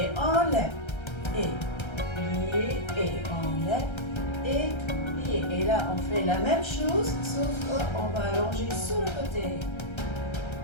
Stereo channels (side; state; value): right; late; 1.3 ms